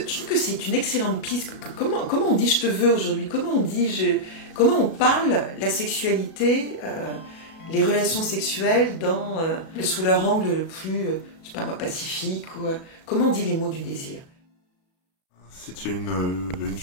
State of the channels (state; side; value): late; right; 37 ms